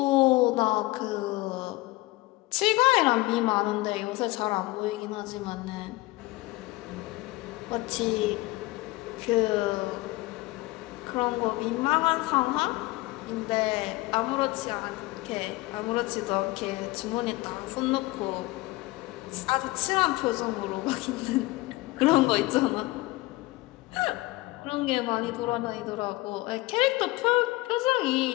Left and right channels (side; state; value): right; quieter; 20.9 dB